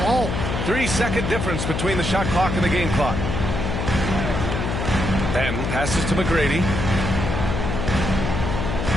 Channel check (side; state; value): left; noise; hum, 2 dB below the sound